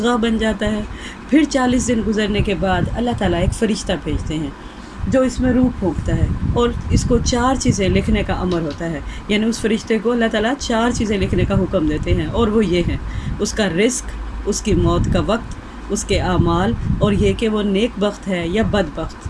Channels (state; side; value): identical; both; correlation 1.00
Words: बन जाता है, फिर 40 दिन गुज़रने के बाद अल्लाह ताला एक फ़रिश्ता भेजते हैं जो इसमें रूह फूंकता है और इसको 4 चीज़ें लिखने का अमर होता है। यानी उस फ़रिश्ते को अल्लाह ताला 4 चीज़ें लिखने का हुक्म देते हैं और वो ये हैं, उसका रिस्क, उसकी मौत का वक्त, उसके आमाल और ये कि वो नेक बख्त है या